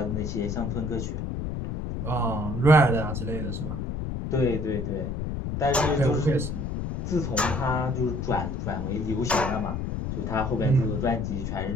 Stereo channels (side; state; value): left; noise; rumble, 3 dB below the sound